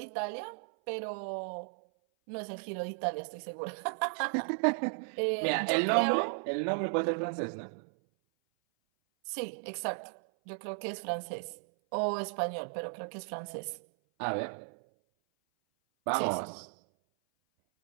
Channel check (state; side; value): silent; left; 55 dB below the other